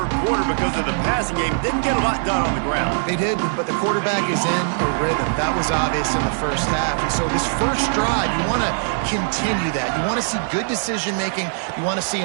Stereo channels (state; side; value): silent; left; 65 dB below the other